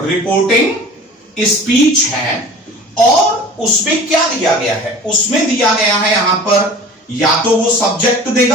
स्पीच है, और उसमें क्या दिया गया है, उसमें दिया गया है यहां पर या तो वो सब्जेक्ट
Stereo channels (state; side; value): normal; both; correlation 0.41